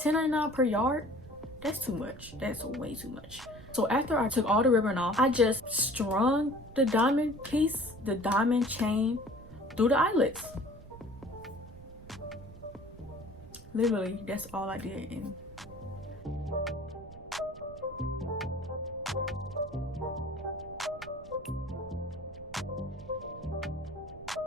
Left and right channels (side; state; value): right; noise; rumble, 18 dB below the sound